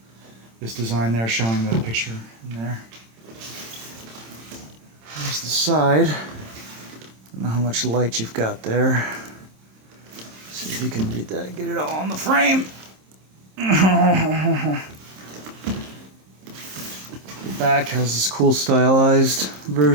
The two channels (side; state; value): left; late; 26 ms